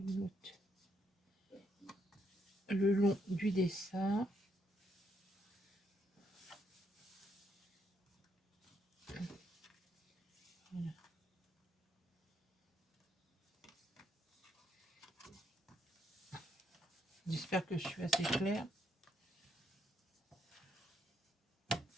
l'autre. Le long du dessin. Voilà. J'espère que je suis assez claire.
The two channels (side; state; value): both; normal; correlation 0.75